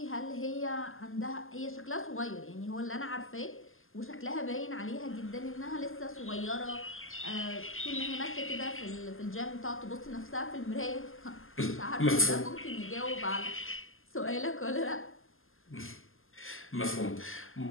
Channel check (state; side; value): late; right; 0.59 ms